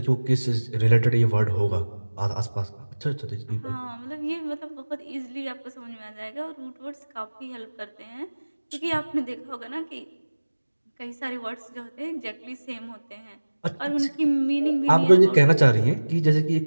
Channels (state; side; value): inverted; both; correlation -1.00